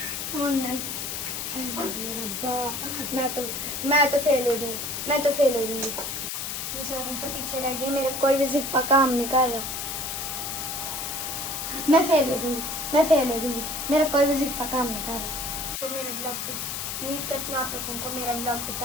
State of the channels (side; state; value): left; noise; hiss, 4 dB below the sound